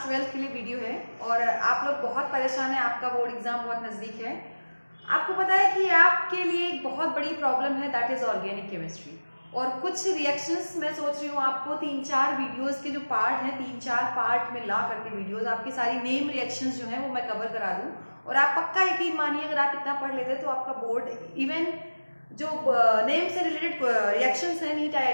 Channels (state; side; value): inverted; both; correlation -1.00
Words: के लिए वीडियो है और आप लोग बहुत परेशान हैं। आपका बोर्ड एग्जाम बहुत नज़दीक है। आपको पता है कि आपके लिए एक बहुत बड़ी प्रॉब्लम है, दैट इज ऑर्गेनिक केमिस्ट्री। और कुछ रिएक्शंस मैं सोच रही हूँ आपको 3-4 वीडियोस के जो पार्ट हैं, 3-4 पार्ट में ला करके वीडियोस आपकी सारी नेम रिएक्शंस जो हैं वो मैं कवर करा दूँ। और आप पक्का यकीन मानिए, अगर आप इतना पढ़ लेते तो आपका बोर्ड इवन जो नेम से रिलेटेड रिएक्शंस हैं नीट